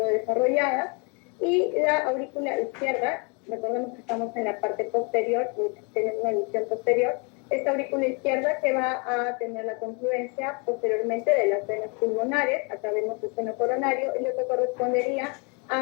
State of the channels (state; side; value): quieter; right; 33.5 dB